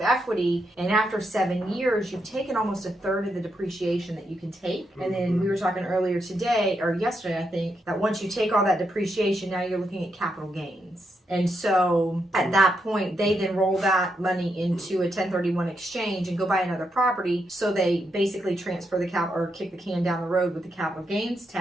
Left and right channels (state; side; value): normal; both; correlation 0.81